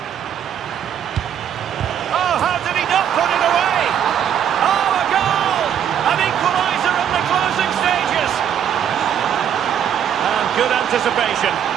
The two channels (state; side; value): quieter; left; 9.2 dB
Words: Oh, how did he not put it away? Oh, a goal! An equaliser in the closing stages. And good anticipation.